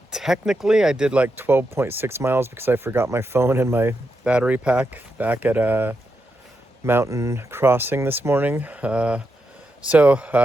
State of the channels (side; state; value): both; normal; correlation 0.85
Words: technically I did like 12.6 miles because I forgot my phone and my battery pack back at Mountain Crossing this morning. So